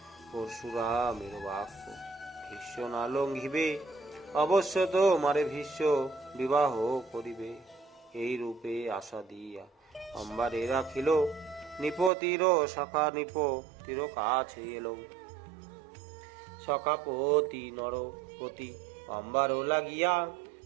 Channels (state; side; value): drops out; left; at 12.1 s